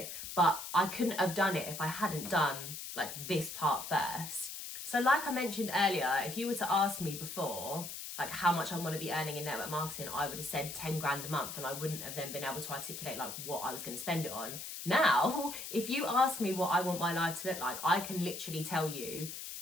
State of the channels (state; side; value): noise; left; hiss, 8 dB below the sound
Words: But I couldn't have done it if I hadn't done like this part first. So like I mentioned earlier, if you were to ask me before, like how much I want to be earning in network marketing, I would have said 10 grand a month and I wouldn't have then been able to articulate like what I was going to spend it on. Now, if you ask me what I want my life to look like, I can literally tell you